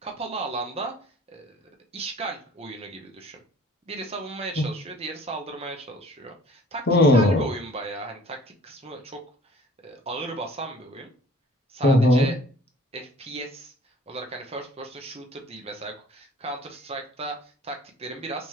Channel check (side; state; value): both; normal; correlation 0.50